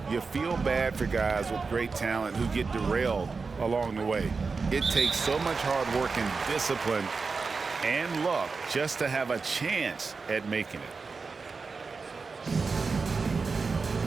you feel bad for guys with great talent who get derailed along the way. It takes so much hard work and discipline and luck just to have a chance at making it.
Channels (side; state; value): left; quieter; 4.6 dB